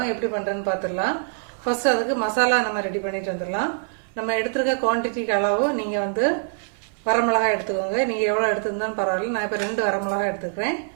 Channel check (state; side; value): silent; left; 59 dB below the other